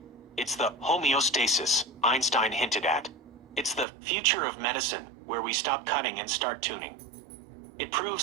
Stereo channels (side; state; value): left; drops out; at 3.9 s